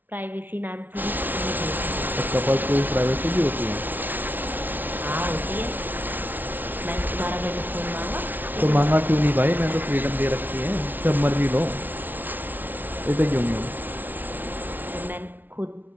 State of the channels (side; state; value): left; late; 0.086 ms